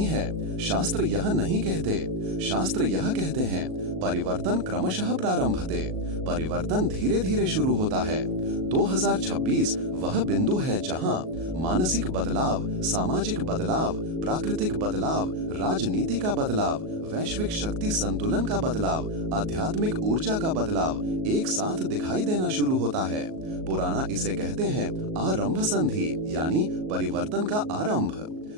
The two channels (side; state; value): left; late; 38 ms